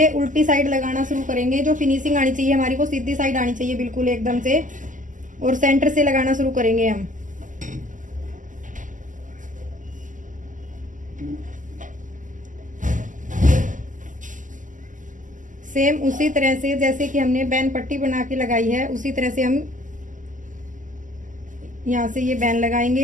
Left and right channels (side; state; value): left; late; 0.37 ms